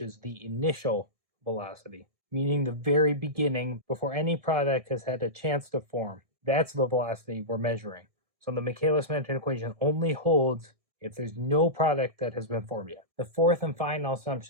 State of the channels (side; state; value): left; late; 1.6 ms